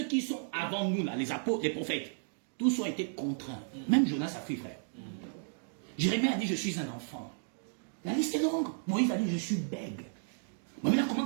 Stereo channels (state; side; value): silent; left; digital silence